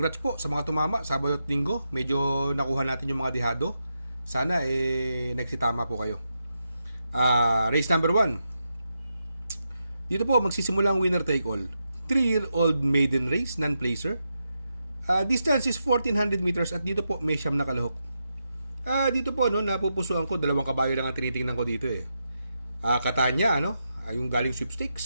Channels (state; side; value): inverted; both; correlation -0.85